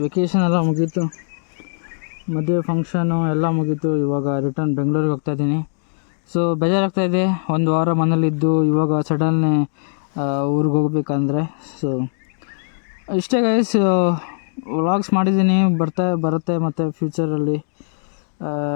ವೆಕೇಷನ್ ಎಲ್ಲ ಮುಗೀತು, ಮದುವೆ ಫಂಕ್ಷನು ಎಲ್ಲ ಮುಗೀತು. ಇವಾಗ ರಿಟರ್ನ್ ಬೆಂಗಳೂರಿಗೆ ಹೋಗ್ತಾಯಿದ್ದೀನಿ. ಸೊ ಬೇಜಾರಾಗ್ತಾಯಿದೆ, ಒಂದು ವಾರ ಮನೇಲಿದ್ದು ಇವಾಗ ಸಡನ್ನೇ ಊರಿಗೆ ಹೋಗ್ಬೇಕಂದ್ರೆ. ಸೊ ಇಷ್ಟೇ ಗೈಸ್, ವ್ಲಾಗ್ಸ್ ಮಾಡಿದ್ದೀನಿ, ಬರುತ್ತೆ ಮತ್ತು ಫ್ಯೂಚರಲ್ಲಿ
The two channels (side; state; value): right; silent; digital silence